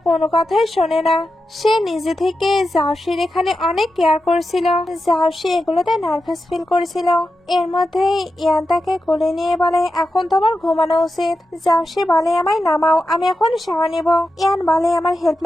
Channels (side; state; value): both; normal; correlation 0.90